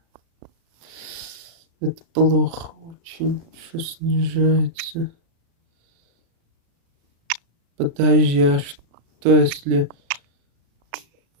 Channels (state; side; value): late; left; 36 ms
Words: Это плохо очень, что снижается. Подожди, а что если...